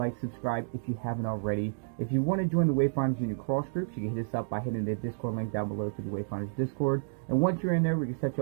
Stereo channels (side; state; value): left; silent; digital silence